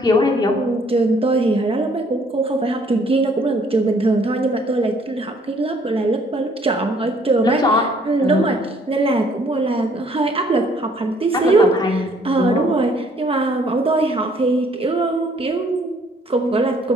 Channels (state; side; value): normal; both; correlation 0.62